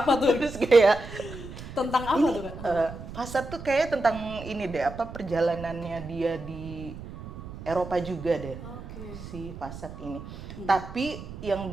tuh? Terus kayak Tentang apa ini, tuh Kak? Fasad tuh kayak tentang ini deh, apa perjalanannya dia di Eropa juga deh. Si Fasad ini. Tapi yang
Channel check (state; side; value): noise; right; rumble, 12 dB below the sound